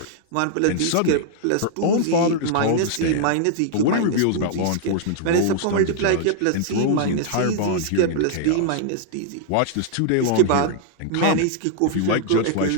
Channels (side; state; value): both; different; correlation -0.01